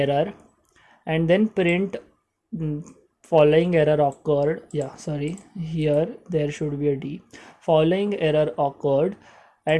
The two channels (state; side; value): identical; both; correlation 1.00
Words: and then print following error occurred. Yeah, sorry, here there should be a d, following error occurred,